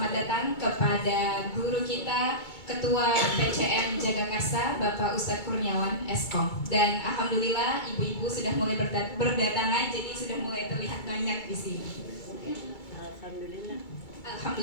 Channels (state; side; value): late; right; 2.3 ms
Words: datang kepada guru kita, Ketua PCM Jagakarsa, Bapak Ustadz Kurniawan Eskom. Dan alhamdulillah ibu-ibu sudah mulai berdatangan, jadi sudah mulai terlihat banyak di sini.